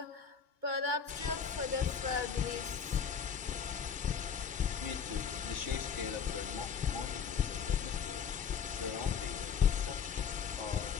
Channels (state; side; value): quieter; right; 6.9 dB